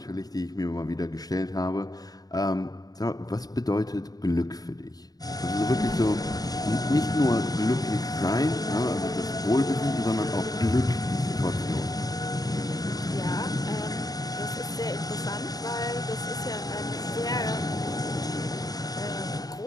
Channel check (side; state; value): right; late; 0.18 ms